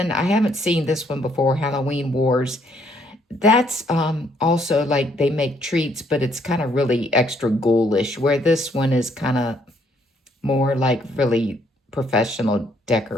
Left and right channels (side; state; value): both; normal; correlation 0.68